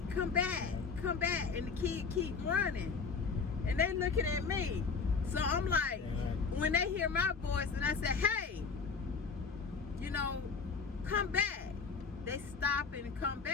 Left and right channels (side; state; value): right; quieter; 5.2 dB